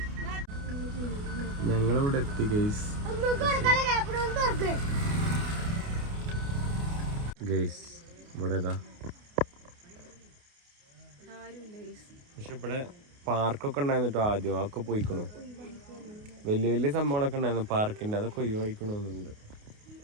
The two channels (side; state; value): left; late; 28 ms